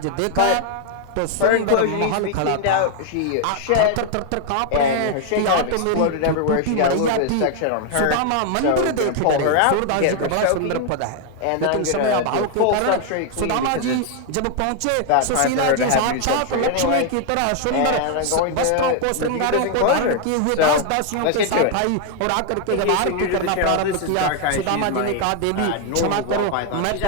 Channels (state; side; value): different; both; correlation 0.00